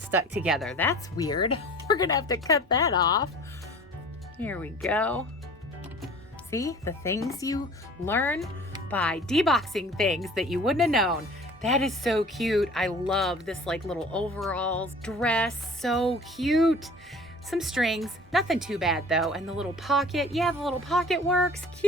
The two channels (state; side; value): normal; both; correlation 0.45